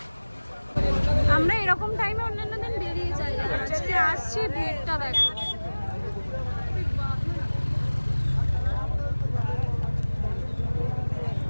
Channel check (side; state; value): both; inverted; correlation -1.00